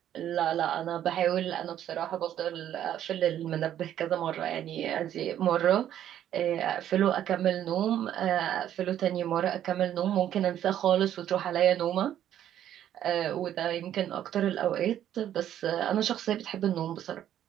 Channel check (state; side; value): quieter; left; 11.0 dB